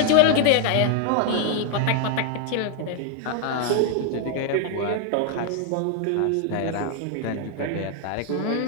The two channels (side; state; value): both; different; correlation 0.01